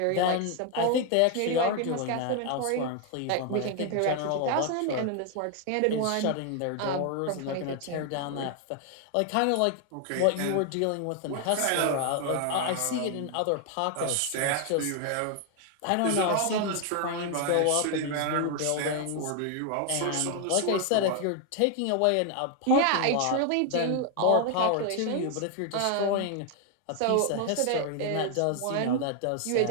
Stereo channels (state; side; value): different; both; correlation 0.00